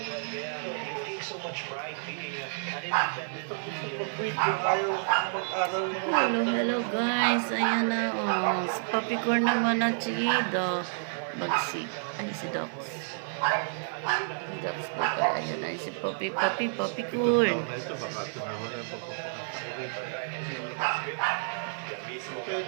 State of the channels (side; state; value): left; silent; 58 dB below the other